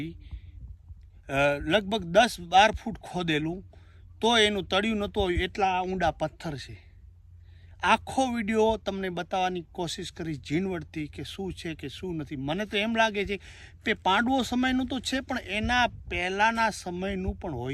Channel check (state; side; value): identical; both; correlation 1.00